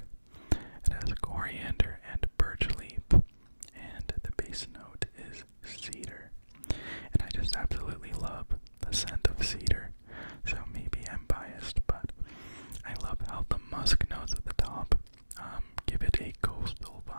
It has coriander and birch leaf, and the base note is cedar. And I just absolutely love the scent of cedar, so maybe I'm biased, but I love how the musk notes at the top give it a coastal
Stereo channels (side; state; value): both; inverted; correlation -1.00